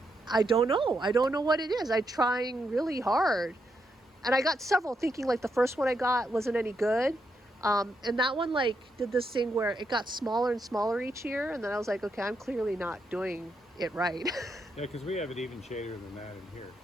I don't know. I don't know what it is. I'm trying really hard. And I got several, thinking like the first one I got wasn't any good. And that one like did this thing where it got smaller and smaller each year. And then I was like, okay, I'm clearly not doing it right. Yeah, because we have it even shadier than that in here.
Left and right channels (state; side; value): normal; both; correlation 0.81